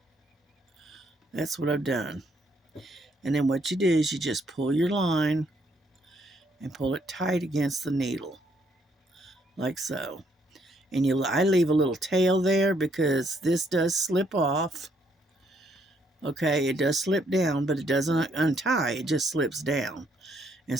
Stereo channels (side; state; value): both; normal; correlation 0.71